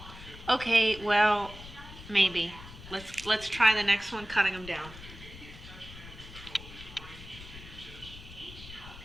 Okay, well, maybe. Let's try the next one, cutting them down.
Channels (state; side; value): noise; left; rumble, 15 dB below the sound